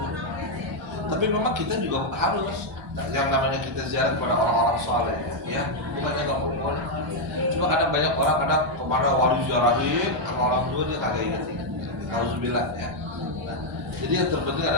Tapi memang kita juga harus yang namanya kita ziarah kepada orang-orang soleh, ya, bukannya nggak boleh. Cuma kadang banyak orang kadang kemana wali ziarahin sama orang tua dia kagak ingat. Alhamdulillah ya. Nah, jadi yang terpenting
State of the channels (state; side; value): normal; both; correlation 0.00